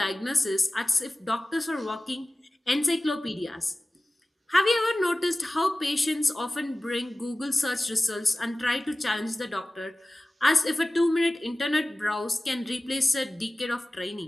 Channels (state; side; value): normal; both; correlation 0.97